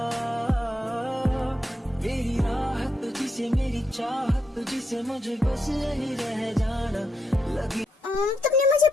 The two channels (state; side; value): normal; both; correlation 0.81